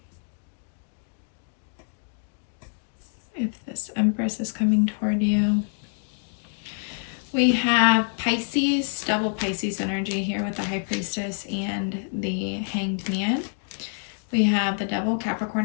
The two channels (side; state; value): right; silent; 61 dB below the other